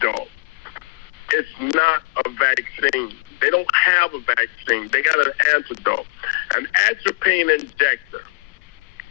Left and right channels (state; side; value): quieter; right; 27.1 dB